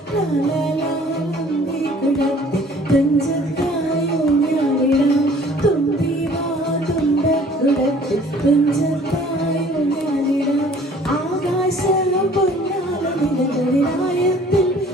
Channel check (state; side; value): normal; both; correlation 0.53